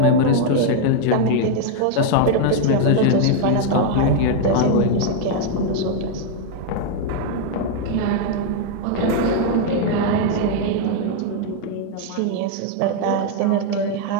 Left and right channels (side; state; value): both; different; correlation 0.00